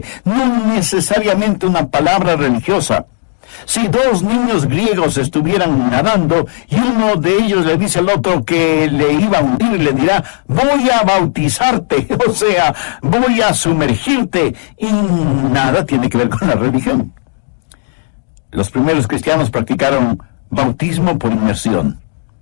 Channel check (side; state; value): right; silent; digital silence